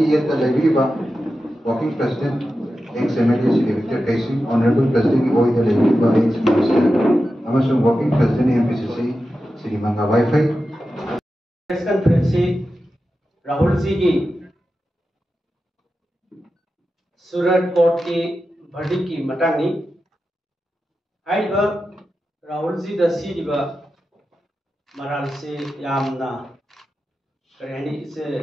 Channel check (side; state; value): both; normal; correlation 0.91